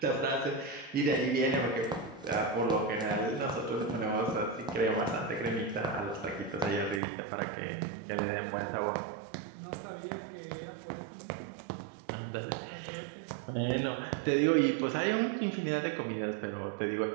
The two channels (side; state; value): left; drops out; at 7.0 s